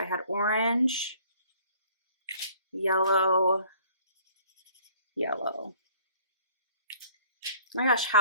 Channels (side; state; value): both; inverted; correlation -0.56